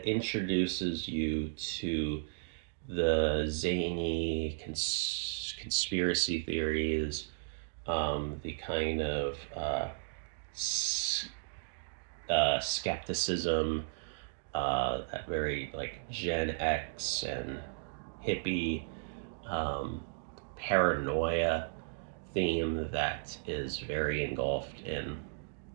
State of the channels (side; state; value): left; silent; digital silence